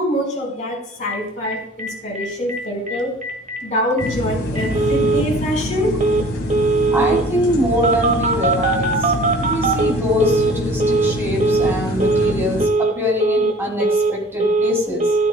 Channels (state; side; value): normal; both; correlation 0.47